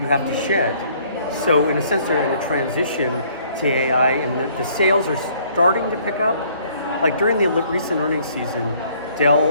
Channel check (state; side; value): inverted; both; correlation -0.61